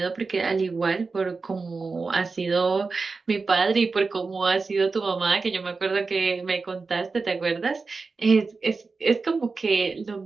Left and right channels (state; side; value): quieter; left; 4.3 dB